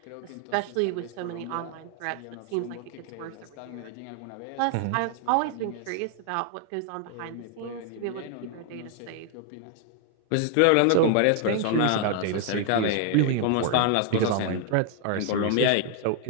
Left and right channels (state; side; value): different; both; correlation 0.00